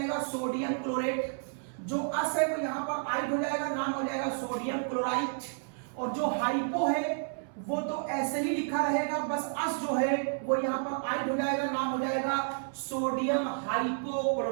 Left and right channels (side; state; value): left; silent; 57 dB below the other